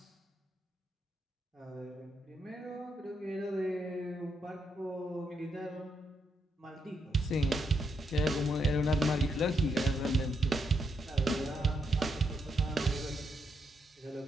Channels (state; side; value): normal; both; correlation 0.79